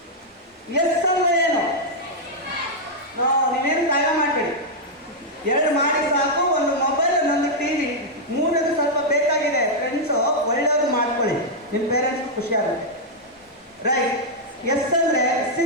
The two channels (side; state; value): both; normal; correlation -0.04